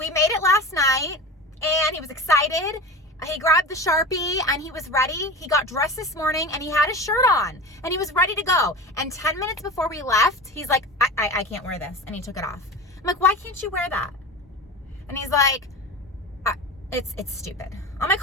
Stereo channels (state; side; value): normal; both; correlation 0.30